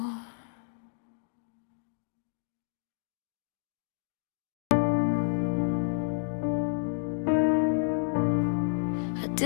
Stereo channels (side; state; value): right; silent; digital silence